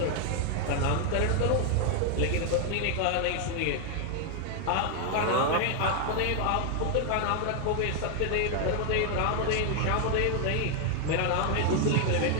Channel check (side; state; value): both; different; correlation 0.00